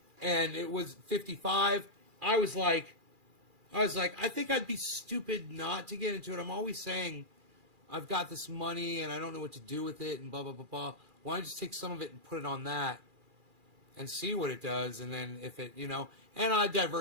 and it was 55. I was like, I think I'd be stupid not to get into it. I'm always saying, I've got this money and I don't know what to do with it and blah, blah, blah, blah. Why don't I just take some of it and put it on that and see what it does? And then if it, you know, and I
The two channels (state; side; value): late; left; 2.4 ms